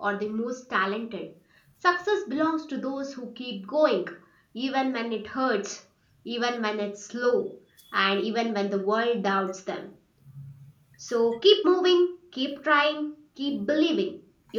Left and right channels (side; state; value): both; identical; correlation 1.00